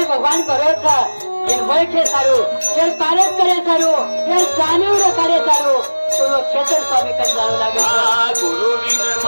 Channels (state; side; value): inverted; both; correlation -1.00